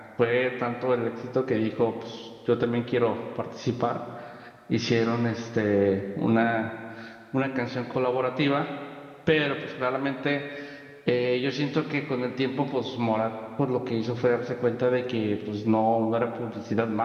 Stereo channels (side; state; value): both; identical; correlation 1.00